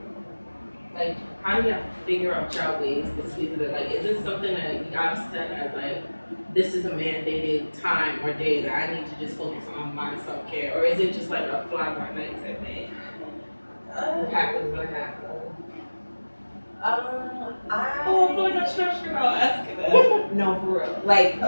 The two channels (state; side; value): inverted; both; correlation -1.00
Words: Like how do you figure out your ways to squeeze it in? Like is this something that you gotta set as like this is a mandated time or day that I need to just focus on my self-care? Or is it just like a fly by night type thing? What happens when it happens? I feel like I'm stressed out asking that. No, for real. Like,